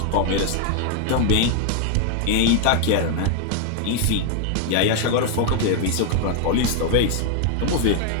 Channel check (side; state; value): both; different; correlation 0.00